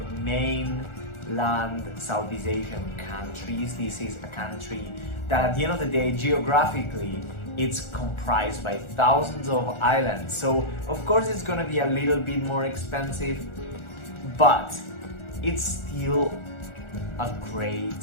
mainland Southeast Asian countries. This is a country that at the end of the day, geographically, it's comprised by thousands of islands. So of course it's gonna be a little bit more expensive, but it's still a great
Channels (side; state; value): right; late; 1.4 ms